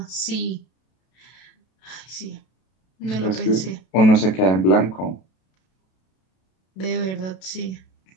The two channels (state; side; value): late; right; 32 ms